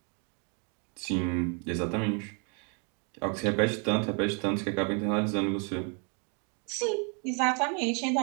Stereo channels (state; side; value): quieter; left; 35.9 dB